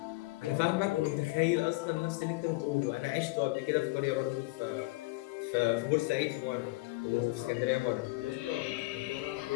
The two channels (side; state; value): right; quieter; 22.2 dB